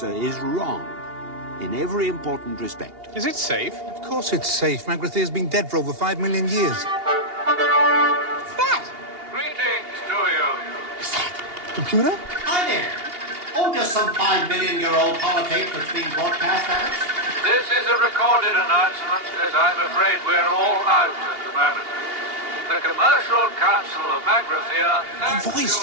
is wrong in every important respect. Is it safe? Of course it's safe. Magrathea's been dead for over 5 million years. What's that? Greetings to you. Computer? Hi there. Oh, just some 5 million-year-old holotape that's being broadcast at us. This is a recorded announcement, as I'm afraid we're all out at the moment. The Commercial Council of Magrathea thanks voice you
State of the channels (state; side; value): late; left; 2.8 ms